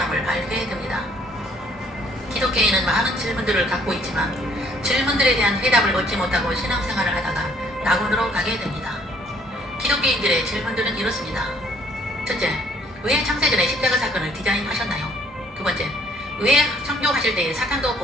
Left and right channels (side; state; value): both; normal; correlation 0.62